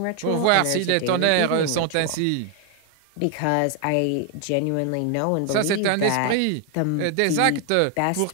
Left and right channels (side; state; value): both; different; correlation 0.00